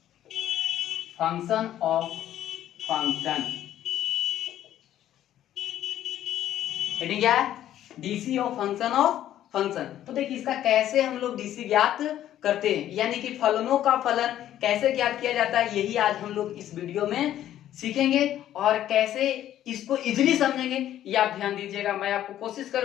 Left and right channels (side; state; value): right; quieter; 12.0 dB